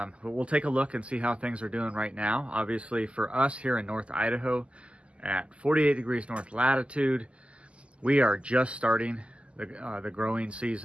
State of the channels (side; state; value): left; late; 0.056 ms